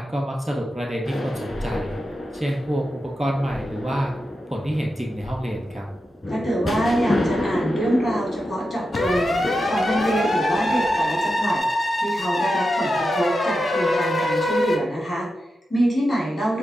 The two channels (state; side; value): normal; both; correlation 0.90